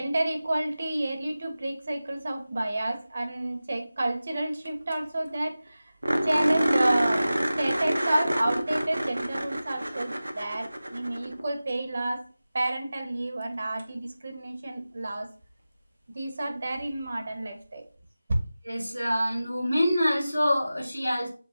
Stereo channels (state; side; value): inverted; both; correlation -0.96